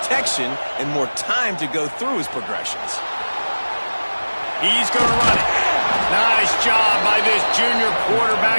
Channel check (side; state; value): both; inverted; correlation -1.00